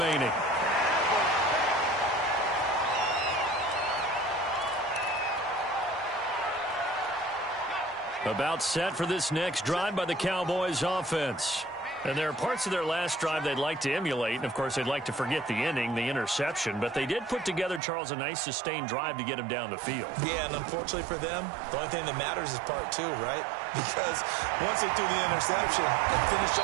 About set for this next drive by the Cowboys offense. And there are parts of their last drive they'd like to emulate. And, of course, they'd like to forget the ending, the interception. But they did put together, Charles, a nice sustained drive to get him down the field. Yeah, and unfortunately for them, the only thing that matters is part 2, right? Because once they threw the interception and finished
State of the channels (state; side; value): drops out; left; at 17.8 s